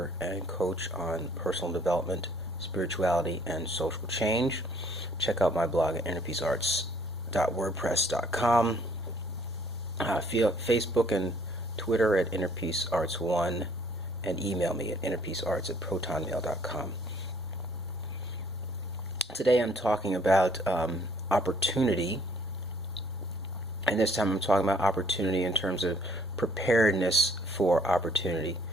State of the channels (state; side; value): normal; both; correlation 0.62